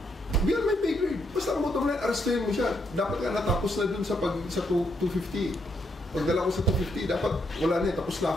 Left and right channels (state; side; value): normal; both; correlation 0.77